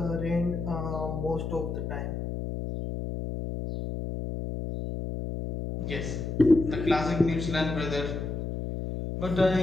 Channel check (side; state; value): left; noise; hum, 4 dB below the sound